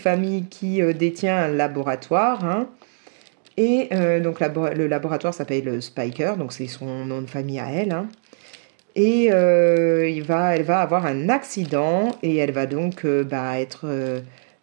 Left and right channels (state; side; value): silent; left; digital silence